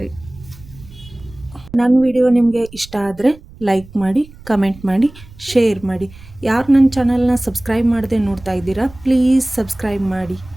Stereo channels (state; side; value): noise; right; rumble, 20 dB below the sound